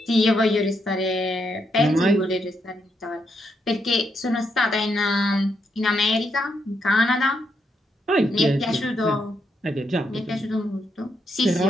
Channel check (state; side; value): normal; both; correlation 0.79